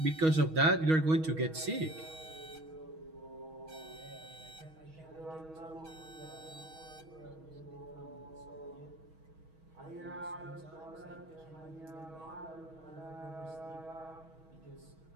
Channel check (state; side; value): late; left; 6.3 ms